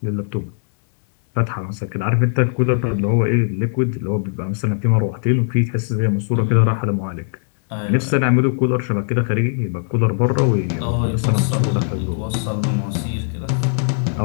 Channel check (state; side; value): silent; right; digital silence